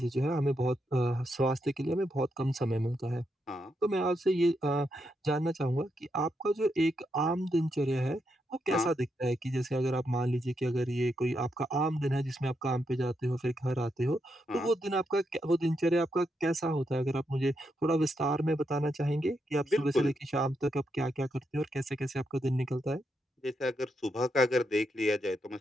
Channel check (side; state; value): both; normal; correlation 0.82